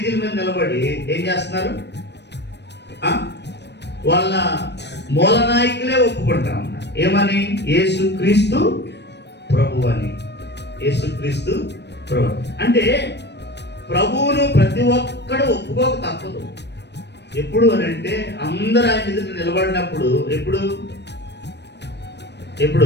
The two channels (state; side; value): late; right; 0.50 ms